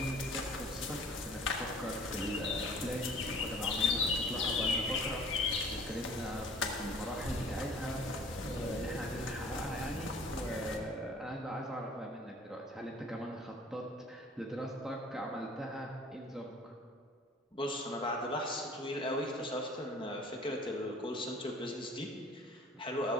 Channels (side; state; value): both; normal; correlation 0.51